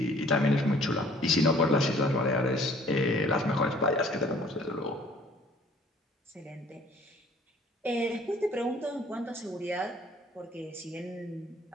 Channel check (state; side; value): normal; both; correlation 0.56